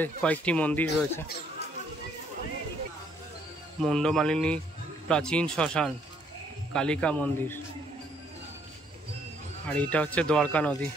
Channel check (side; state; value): both; normal; correlation 0.67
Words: কয়েকটি মন্দির রয়েছে। মুন্ডমালিনী প্রাচীন শ্মশান, কালিকা মন্দির, আর এটা হচ্ছে দ্বারকা নদী।